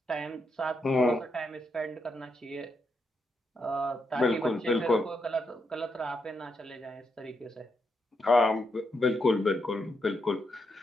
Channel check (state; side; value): normal; both; correlation 0.81